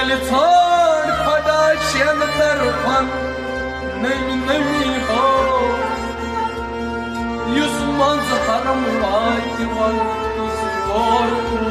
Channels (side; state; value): both; identical; correlation 1.00